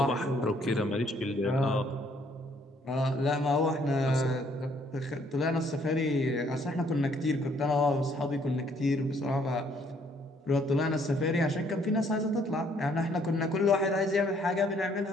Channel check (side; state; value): both; normal; correlation 0.65